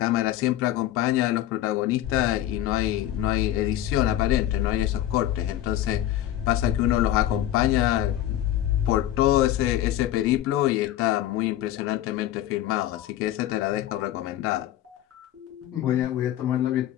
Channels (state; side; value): quieter; right; 12.9 dB